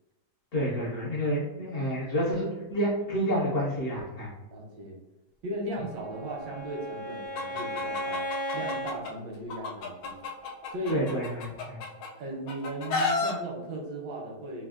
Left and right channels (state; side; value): normal; both; correlation -0.05